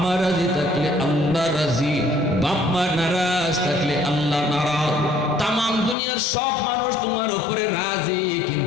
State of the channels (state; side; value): drops out; right; at 6.0 s